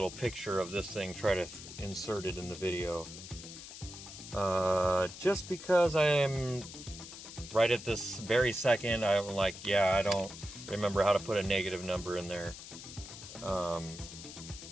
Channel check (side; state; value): left; noise; hiss, 13 dB below the sound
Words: picture of this thing, try to insert it in the video, just because I am right at this very second, I'm like, yeah, I don't remember how to put a negative number in there, but